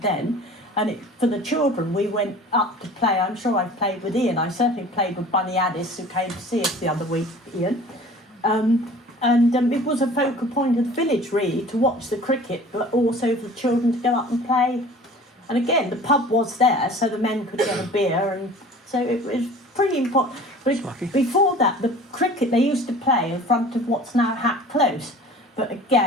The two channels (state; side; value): normal; both; correlation 0.45